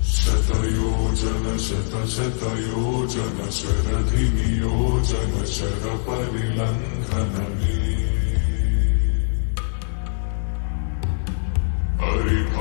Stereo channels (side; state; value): right; silent; 56 dB below the other